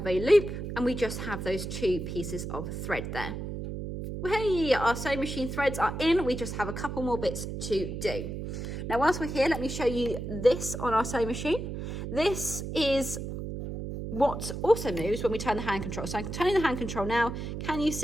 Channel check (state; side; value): noise; right; hum, 6 dB below the sound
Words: a loop, and we just have those two pieces of thread there. Well, hey, our sewing machine threads are in. We just have a couple more bits to do. Now, whilst we're here, let me show you this on our sewing machine. This is what also moves when we turn the hand control. So I'm turning the hand control now. Can you